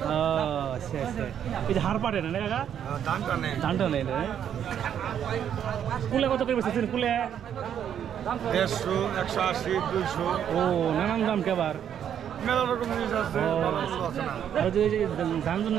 এই যে হাড় পাটে না কাকা, ধানটা নেই না। কুলে কত করে বেচেছেন? কুলে 150, 180, 200। ও নানান দাম কে আবার মেলা রকম জিনিস আছে। ধান ধান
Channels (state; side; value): quieter; left; 9.2 dB